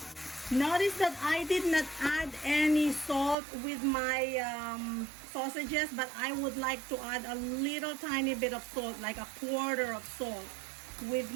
Notice that I did not add any salt with my sausages, but I would like to add a little tiny bit of salt, like a quarter of salt with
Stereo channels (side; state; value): left; drops out; at 3.4 s